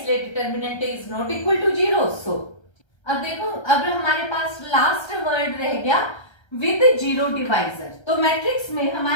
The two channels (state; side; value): late; right; 1.3 ms